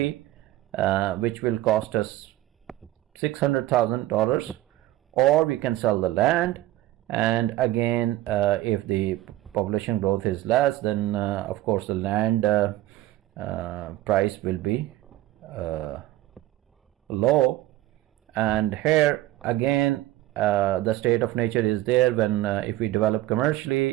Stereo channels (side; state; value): left; quieter; 15.5 dB